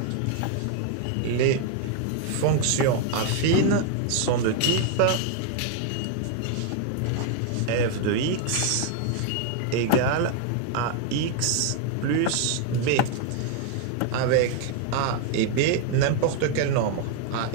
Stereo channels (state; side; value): different; both; correlation 0.00